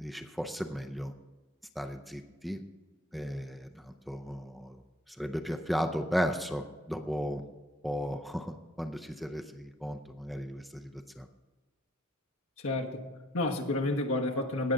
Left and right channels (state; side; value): normal; both; correlation 0.61